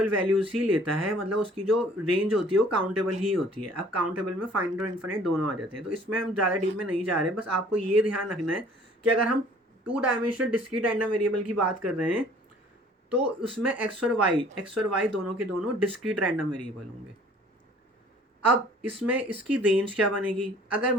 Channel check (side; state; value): both; normal; correlation 0.54